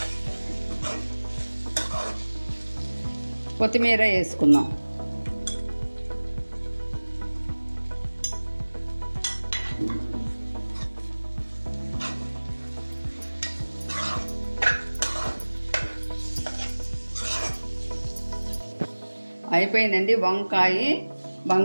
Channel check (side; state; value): both; inverted; correlation -1.00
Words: కొత్తిమీర వేసుకుందాం. అయిపోయిందండి. వంకాయ,